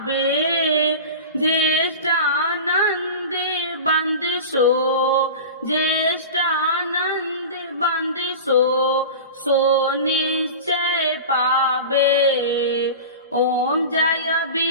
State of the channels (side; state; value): both; inverted; correlation -0.31